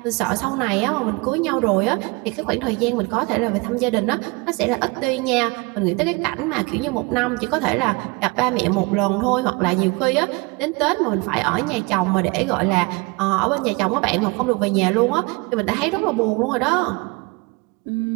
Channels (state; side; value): quieter; left; 27.0 dB